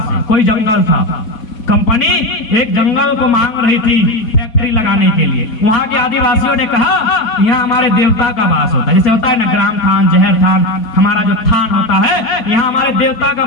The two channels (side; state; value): right; late; 4.5 ms